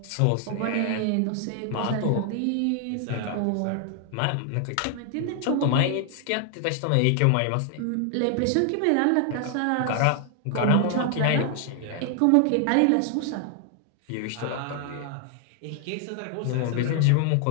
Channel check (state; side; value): different; both; correlation 0.00